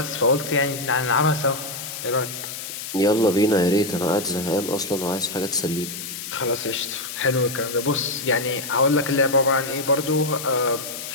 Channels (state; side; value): noise; left; hiss, 8 dB below the sound